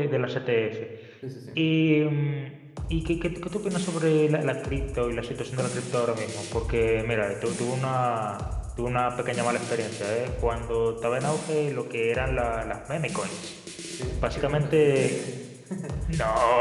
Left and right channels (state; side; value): identical; both; correlation 1.00